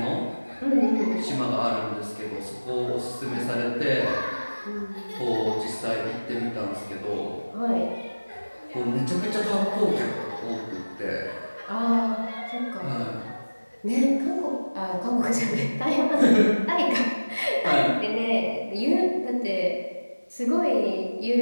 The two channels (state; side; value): inverted; both; correlation -1.00